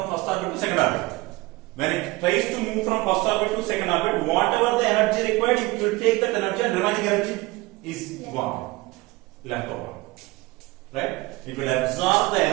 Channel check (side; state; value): left; quieter; 21.6 dB